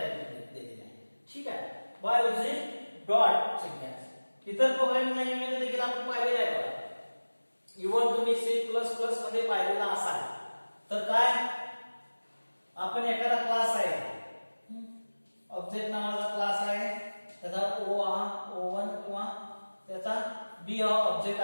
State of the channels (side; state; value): both; inverted; correlation -1.00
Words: केलेलं आहे. ठीक आहे. By using dot syntax. इतर प्रोग्रामिंग लँग्वेजमध्ये देखील आपण पाहिलेलं आहे बघा. इव्हन तुम्ही C++ मध्ये पाहिलेला असाल तर काय आपण एखादा क्लास आहे, ऑब्जेक्ट नावाचा क्लास आहे, त्याचा O1 किंवा त्याचा B हा ऑब्जेक्ट